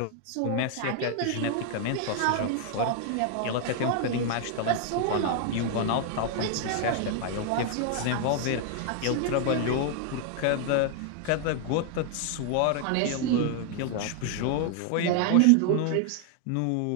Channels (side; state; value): both; different; correlation 0.00